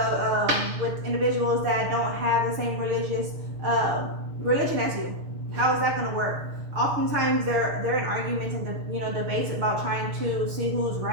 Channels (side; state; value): left; late; 6.6 ms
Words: with individuals that don't have the same religion as you. How is that going to work? Oftentimes they're in arguments and debates about trying to see who's